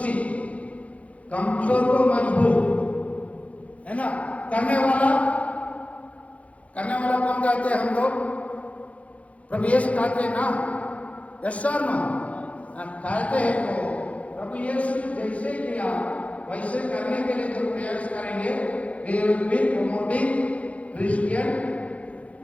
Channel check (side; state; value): right; late; 0.065 ms